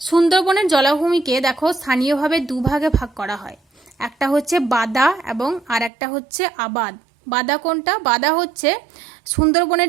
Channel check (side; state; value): left; drops out; at 5.9 s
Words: সুন্দরবনের জলাভূমিকে দেখো স্থানীয়ভাবে দুভাগে ভাগ করা হয়, একটা হচ্ছে বাদা এবং আর একটা হচ্ছে আবাদ। বাদা কোনটা? বাদা হচ্ছে